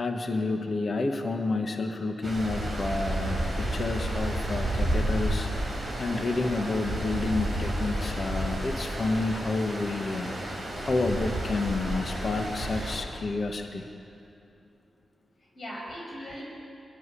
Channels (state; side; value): normal; both; correlation 0.88